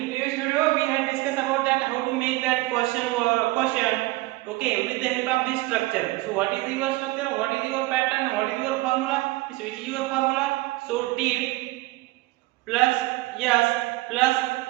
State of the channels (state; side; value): quieter; left; 20.1 dB